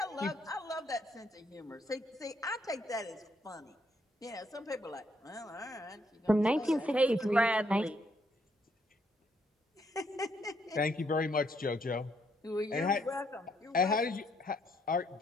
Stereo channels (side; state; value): both; normal; correlation 0.72